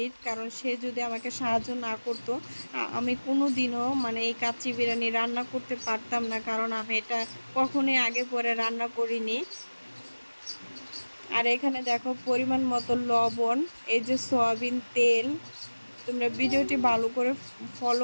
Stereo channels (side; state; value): both; inverted; correlation -1.00